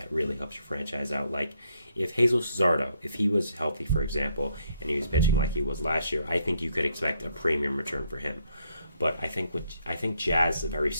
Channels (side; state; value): both; inverted; correlation -0.72